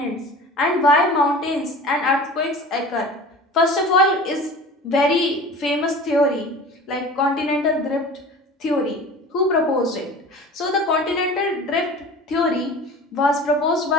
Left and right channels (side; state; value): both; normal; correlation 0.39